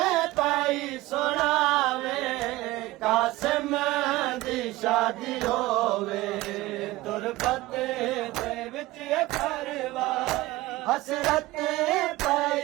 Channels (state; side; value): quieter; left; 18.7 dB